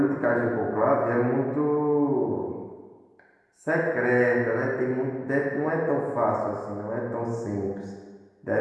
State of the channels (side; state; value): both; identical; correlation 1.00